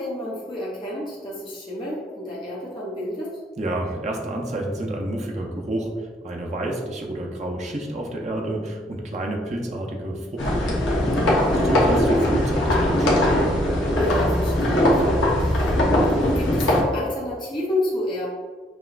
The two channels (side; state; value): both; normal; correlation 0.66